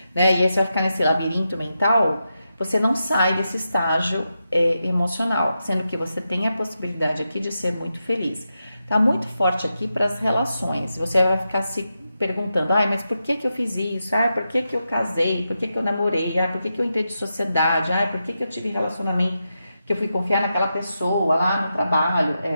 né? E aí você vai ficar nesse labirinto mental, você não sai desse estágio emocional, sendo que você tem a possibilidade aqui de ser muito feliz. Tá muito forte aqui para as relações, você vai ficar se perguntando, mas por que eu fiz isso? Por que eu casei? Por que eu namorei? Por que eu entrei de sociedade? Por que eu tive relacionamento? Que eu fui confiar naquela pessoa lá no trabalho?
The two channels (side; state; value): both; inverted; correlation -0.88